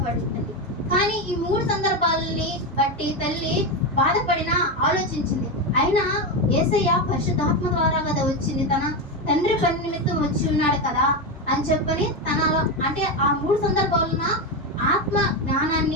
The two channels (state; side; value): normal; both; correlation 0.12